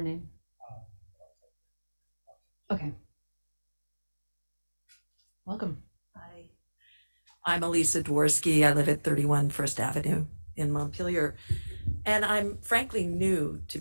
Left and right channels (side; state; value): both; inverted; correlation -1.00